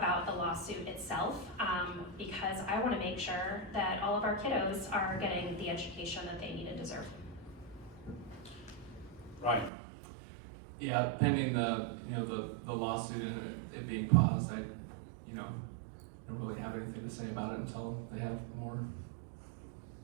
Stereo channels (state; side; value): drops out; left; at 9.7 s